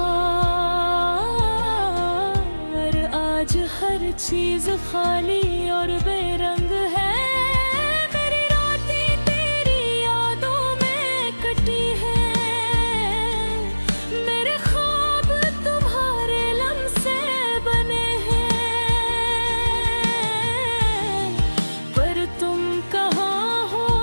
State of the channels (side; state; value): both; inverted; correlation -1.00